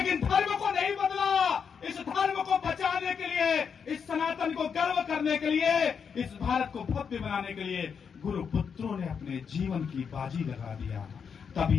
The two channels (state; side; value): quieter; right; 6.6 dB